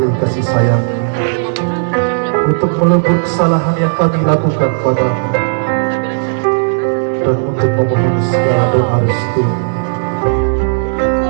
kasih sayang, untuk melebur kesalahan yang kami lakukan padamu, dan untuk memohon segala doa restu.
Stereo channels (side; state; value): left; silent; digital silence